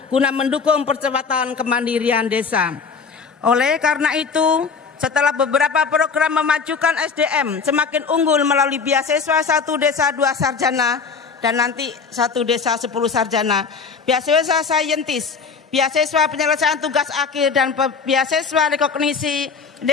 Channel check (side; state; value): right; quieter; 5.4 dB